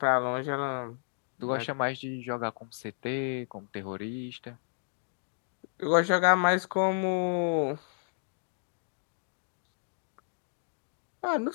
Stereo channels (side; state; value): right; silent; digital silence